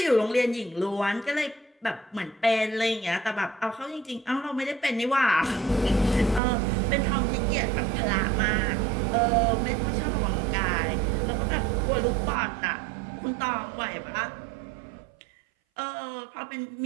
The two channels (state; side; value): drops out; left; at 6.4 s